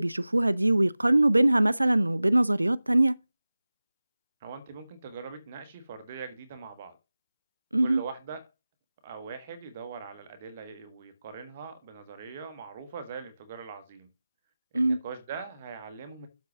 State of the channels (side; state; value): both; inverted; correlation -0.98